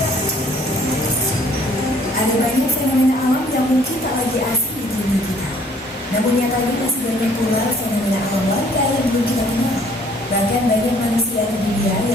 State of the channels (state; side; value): normal; both; correlation 0.59